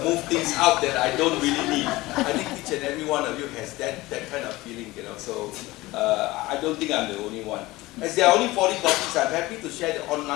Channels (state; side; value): quieter; right; 19.5 dB